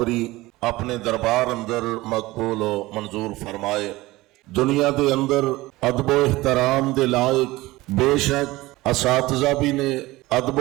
اپنے دربار اندر مقبول و منظور فرمائے۔ دنیا دے اندر ادب و احترام دے لائق بے شک اساتذہ بھی نے، ادب و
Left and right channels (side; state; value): left; quieter; 19.4 dB